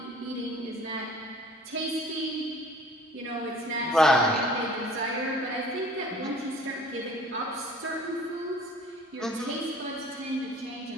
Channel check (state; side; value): normal; both; correlation 0.49